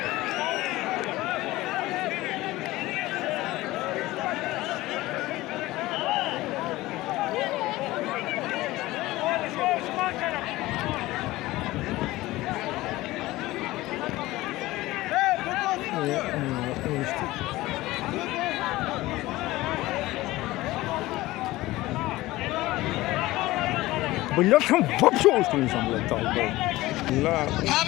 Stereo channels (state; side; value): quieter; right; 18.3 dB